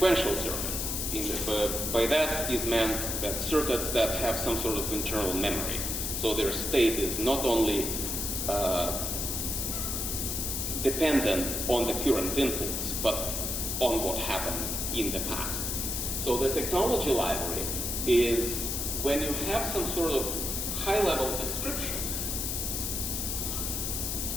circuits. By that is meant that circuits that have some sort of internal memory. So their state is not only dependent on the current inputs, but on what happened in the past. So the technology library is when you have some sort of high-level description.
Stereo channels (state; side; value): noise; left; hiss, 1 dB below the sound